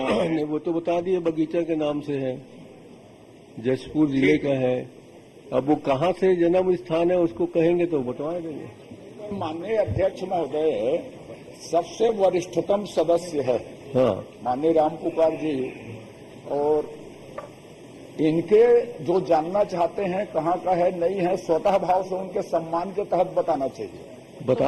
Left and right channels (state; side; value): identical; both; correlation 1.00